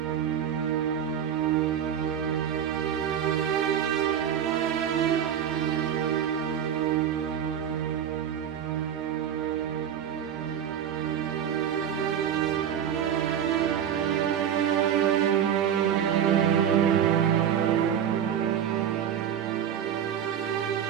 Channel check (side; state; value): left; quieter; 9.2 dB